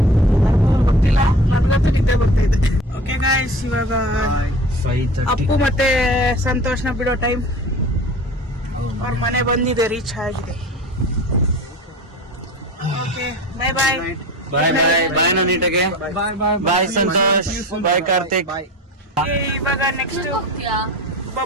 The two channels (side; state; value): both; normal; correlation 0.37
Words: ಗೊತ್ತಿಲ್ಲ, ನನ್ಗಂತೂ ನಿದ್ದೆ ಬರ್ತಾ ಇದೆ. ಓಕೆ ಗಾಯ್ಸ್, ಇವಾಗ 5:30. ಅಪ್ಪು ಮತ್ತೆ ಸಂತೋಷ್ನ ಬಿಡೋ ಟೈಮ್. ಅವ್ರ ಮನೆ ಬಂದಿದೆ, ರೀಚ್ ಆಗಿದೆ. ಓಕೆ, ಬಾಯ್ ಬಾಯ್. ಬಾಯ್ ಬಾಯ್ ಬಾಯ್ ನೀಟಾಗೆ. ಬಾಯ್ ಸಂತೋಷ್, ಬಾಯ್ ಕಾರ್ತಿಕ್. ಇವಾಗ ನೆಕ್ಸ್ಟ್